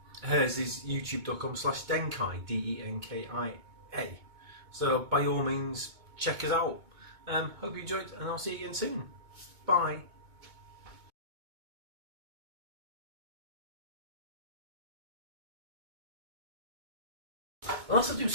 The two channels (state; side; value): late; left; 2.2 ms